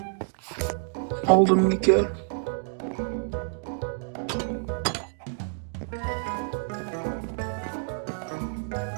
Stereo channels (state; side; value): silent; left; 57 dB below the other